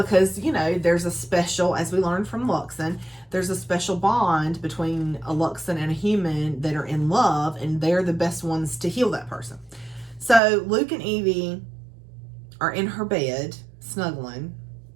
you know, there's a special, as we learned from Luxon, there's a special bond between a Luxon and a human that are in love, and they're the best ones to heal that person. So Luke and Evie are in her bed, snuggling,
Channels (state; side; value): drops out; left; at 10.4 s